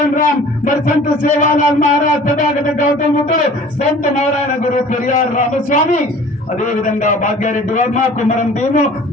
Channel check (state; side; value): normal; both; correlation 0.47